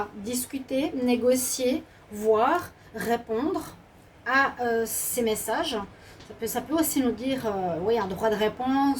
discuter, négocier, voir, répondre à ces messages. Ça peut aussi nous dire oui, un droit de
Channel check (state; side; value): identical; both; correlation 1.00